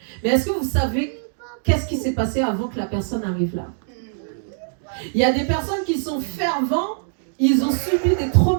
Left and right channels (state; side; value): silent; left; digital silence